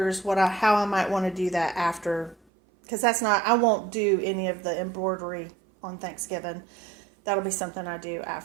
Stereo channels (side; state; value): left; drops out; at 2.4 s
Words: how I might want to do that after, because I won't do any of the embroidery on Thanksgiving. That'll be something I do